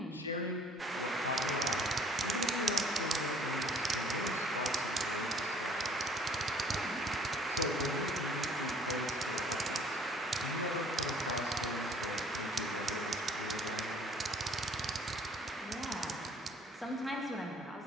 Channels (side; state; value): both; normal; correlation 0.55